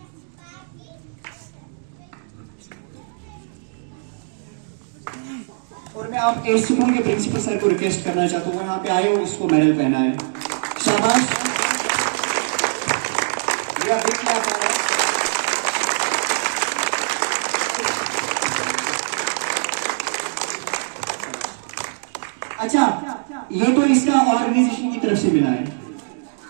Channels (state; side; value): silent; left; digital silence